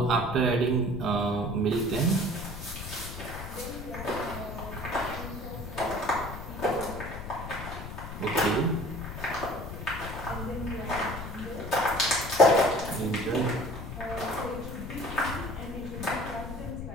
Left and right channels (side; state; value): left; noise; rumble, 9 dB below the sound